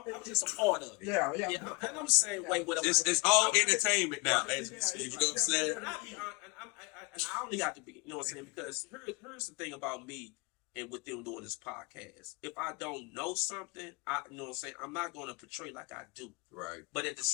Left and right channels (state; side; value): quieter; right; 28.7 dB